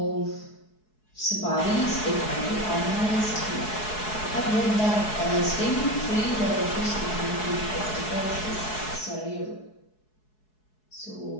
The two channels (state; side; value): late; right; 4.7 ms